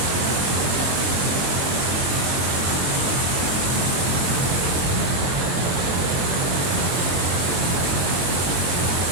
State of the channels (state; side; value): late; left; 22 ms